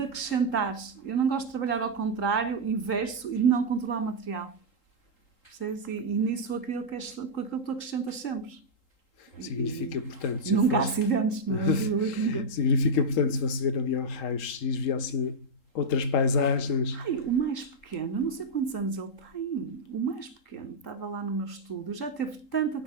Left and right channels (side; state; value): right; late; 3.8 ms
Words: acrescentar. Eu não gosto de trabalhar ao contrário, inverso, e de não controlar o material. Percebes? E nisso aquilo que tu acrescentas sempre. Significa, portanto... Nunca há acidentes, não é? Significa, portanto, se fosse ver ali ao raio-x, via assim outras paisagens... O mais pequeno, eu não sei quantos anos ele tem. O mais pequeno estava lá no meu estúdio, já teve tanta